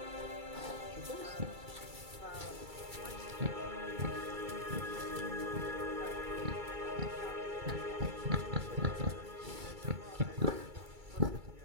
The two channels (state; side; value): late; left; 2.3 ms